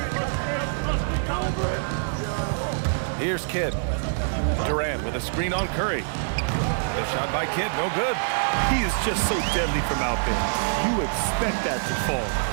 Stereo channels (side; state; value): left; silent; digital silence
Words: Here's Kidd. Durant with a screen on Curry. The shot by Kidd, no good. He is just so deadly from out there. You expect that to fall.